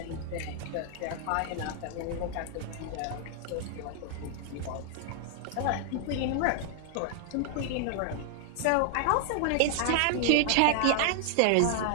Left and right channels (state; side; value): different; both; correlation 0.00